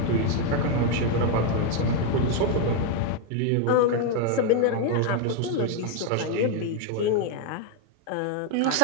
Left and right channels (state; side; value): different; both; correlation 0.01